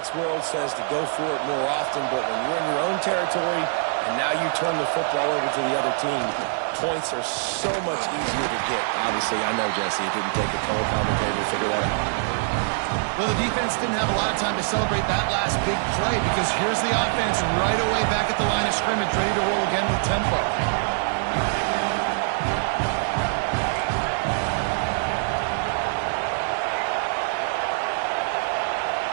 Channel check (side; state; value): left; silent; digital silence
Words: world says to go for it more often, but when you're in your own territory and now you turn the football over to the other team, points are so much easier to get. Obviously, I know, Jesse, it didn't take a color commentator to figure that out. Well, the defense didn't have a lot of time to celebrate that last big play, because here's the offense right away back at the line of scrimmage, ready to roll again with tempo.